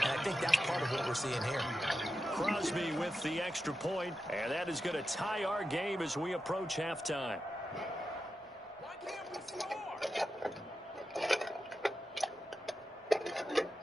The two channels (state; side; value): normal; both; correlation 0.90